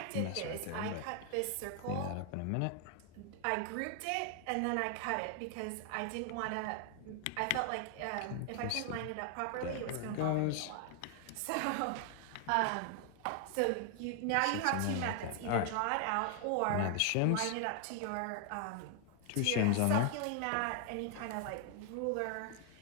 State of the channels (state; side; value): different; both; correlation 0.00